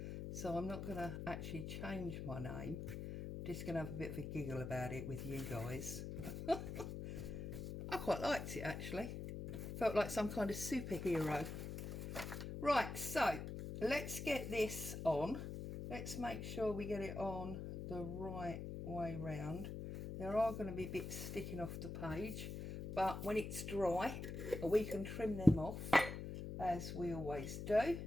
So I'm not going to actually change my name. I'm just going to have a bit of a giggle about it with you guys. I quite liked it actually. Felt like some kind of superhero. Right, so let's get this on. Let's make sure we get it on the right way round. There are going to be bits sticking off the page, but when it's dry, we can trim them off as we always do.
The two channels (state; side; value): noise; left; hum, 6 dB below the sound